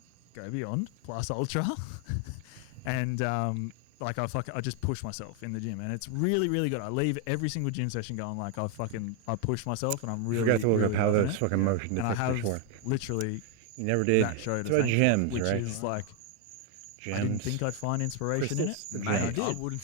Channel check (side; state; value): both; different; correlation 0.01